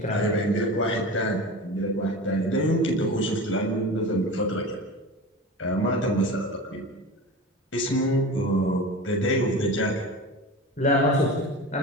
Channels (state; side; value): normal; both; correlation 0.31